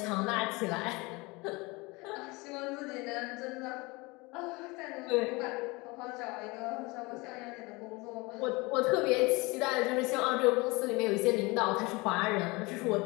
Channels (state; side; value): quieter; right; 24.8 dB